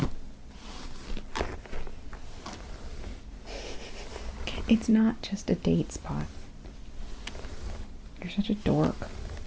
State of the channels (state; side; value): identical; both; correlation 1.00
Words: It's not just a date spot. You're such a dork.